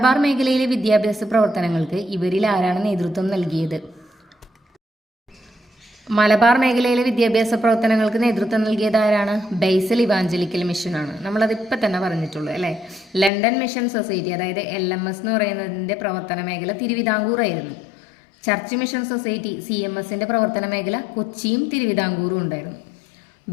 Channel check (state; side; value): drops out; right; at 13.3 s